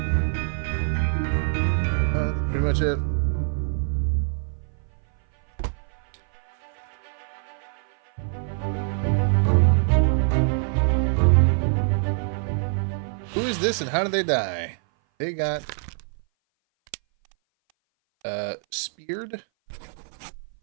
Pretty much it. Who is this and how did they die? They got speared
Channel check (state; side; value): silent; left; 58 dB below the other